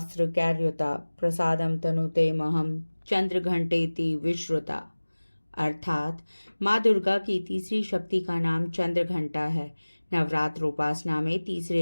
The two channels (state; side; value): inverted; both; correlation -1.00